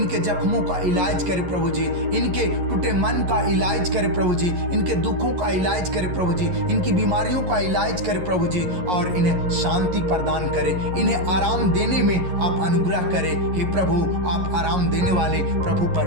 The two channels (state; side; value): late; left; 11 ms